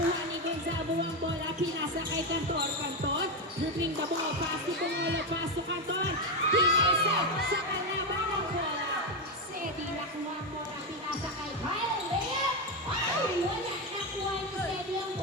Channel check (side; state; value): both; normal; correlation 0.10